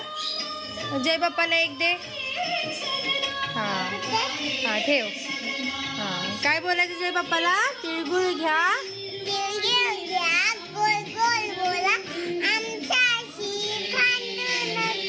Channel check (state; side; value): identical; both; correlation 1.00